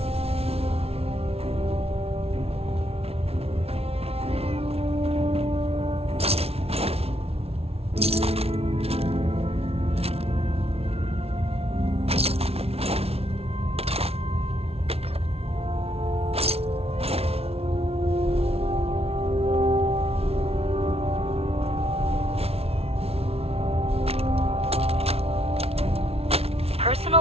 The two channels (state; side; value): late; left; 0.30 ms